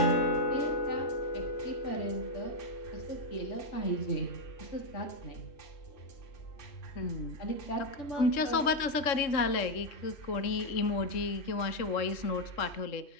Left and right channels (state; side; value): late; right; 3.7 ms